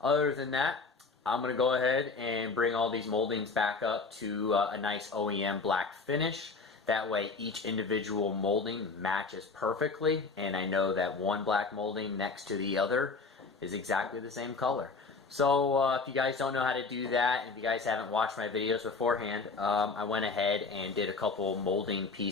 than that, I'm going to go ahead and bring all these moldings back up to a nice OEM black finish. That way each individual molding matches perfectly, and I know that one black molding next to the other is exactly the same color. So if you guys don't know how to do that, and if you guys haven't watched my videos beforehand, I went ahead and did a couple molding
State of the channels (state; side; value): quieter; right; 4.3 dB